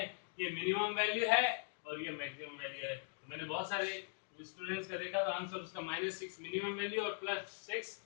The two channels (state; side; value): silent; right; 50 dB below the other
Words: ये मिनिमम वैल्यू है और ये मैक्सिमम वैल्यू है। तो मैंने बहुत सारे स्टूडेंट्स का देखा, तो आंसर उसका -6 मिनिमम वैल्यू और +6